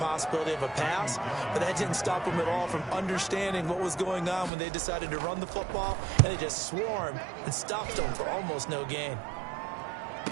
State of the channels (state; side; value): drops out; left; at 4.5 s